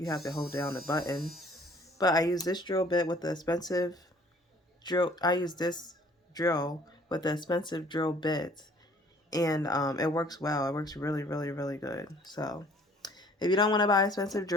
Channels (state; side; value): normal; both; correlation 0.55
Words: have to hold down the button. But I use this drill bit with the expensive drill. I use this drill with the expensive drill bits, and it works well. It works really, really, really good. So if you don't want to buy an expensive